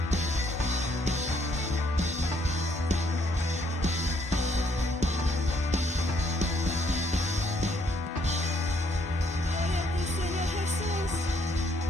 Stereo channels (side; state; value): both; normal; correlation 0.68